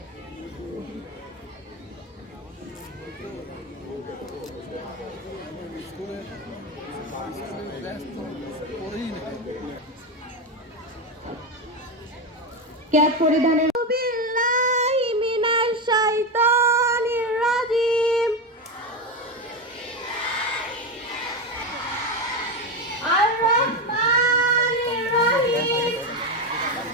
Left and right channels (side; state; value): both; normal; correlation 0.14